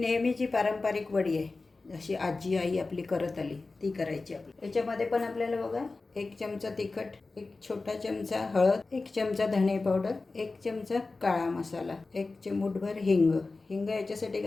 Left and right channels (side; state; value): right; quieter; 3.6 dB